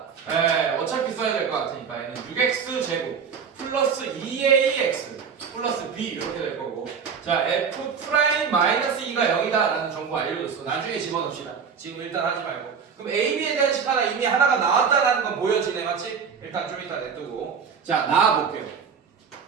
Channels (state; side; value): quieter; left; 6.4 dB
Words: 네, 어차피 써야 될 것 같으니까 얘는 6x 제곱 플러스 2ax 플러스 b 이렇게 될 거고, 자, f 프라임 마이너스 2가 0이다 라는 정보 알려줬어. 나중에 집어넣읍시다. 지금 일단 하지 말고. 그럼 a, b에 대한 식 하나 이미 하나가 나왔다라는 건 보여지네, 맞지? 일단 좀 이따 냅두고, 자, 나와볼게요.